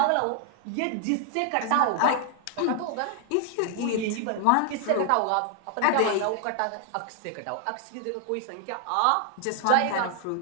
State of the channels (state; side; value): different; both; correlation 0.00